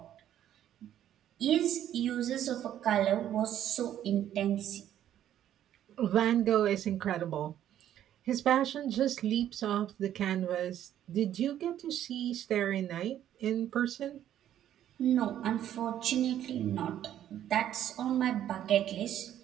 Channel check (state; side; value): quieter; left; 11.2 dB